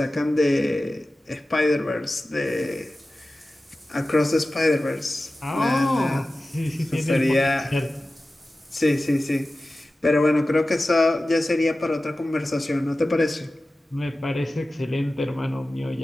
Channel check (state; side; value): normal; both; correlation 0.95